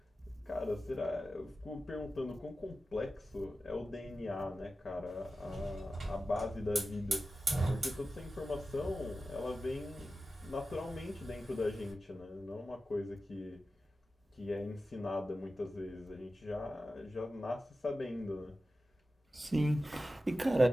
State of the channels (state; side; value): normal; both; correlation 0.93